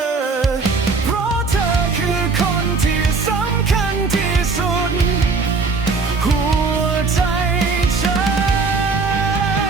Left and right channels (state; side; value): quieter; left; 4.3 dB